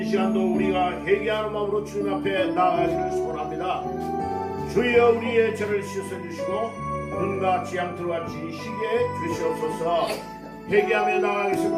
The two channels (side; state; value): both; identical; correlation 1.00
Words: 시간도 우리가 회개하는 마음으로 주님 앞에 나아가시길 소원합니다. 주여 우리의 죄를 씻어주시고 눈과 지향틀과 지시게 주시옵소서. 회개하며